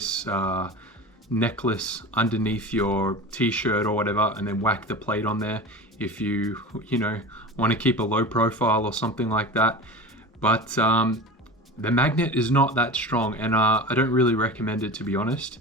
necklace underneath your t-shirt or whatever and then whack the plate on there if you want to keep a low profile or something like that. But the magnet is not that strong, and I don't really recommend it, to be honest,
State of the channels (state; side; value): normal; both; correlation 0.31